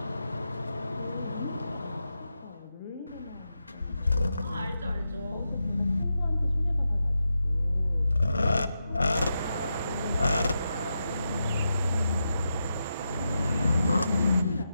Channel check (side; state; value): both; inverted; correlation -0.87